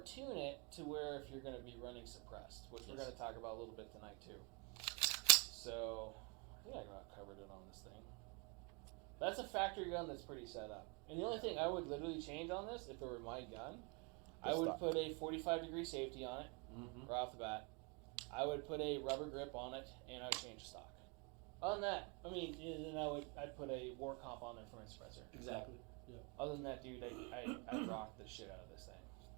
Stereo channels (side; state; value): left; quieter; 32.0 dB